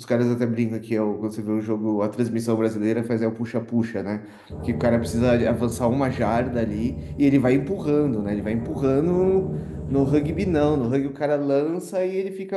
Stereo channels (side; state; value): both; identical; correlation 1.00